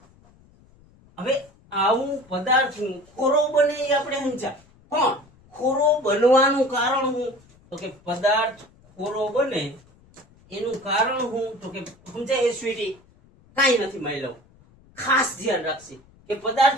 હવે આવું પદાર્થ ખોરો બને એ આપણે સમજ્યા, પણ ખોરો બનવાનું કારણ શું તો કે પદાર્થ ખોરો બને એનું કારણ શું તો કે સમજાય સ્વીટી કાંઈ નથી માયલો. ખાસ ધ્યાન રાખશે કે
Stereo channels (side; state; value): left; noise; rumble, 29 dB below the sound